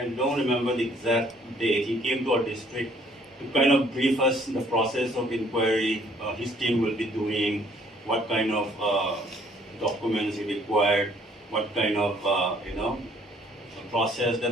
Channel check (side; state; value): both; normal; correlation 0.61